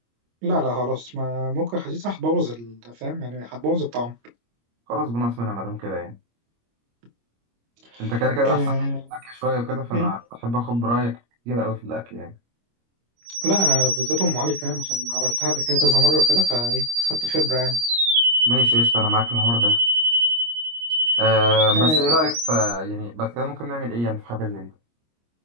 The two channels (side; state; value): left; late; 25 ms